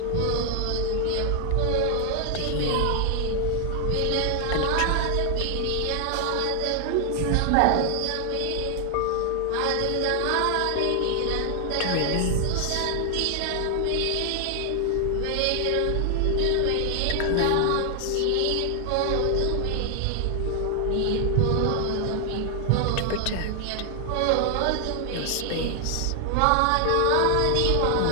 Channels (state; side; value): different; both; correlation 0.00